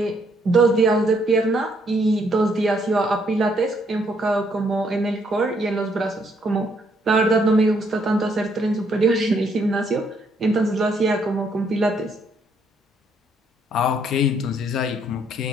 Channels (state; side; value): normal; both; correlation 0.70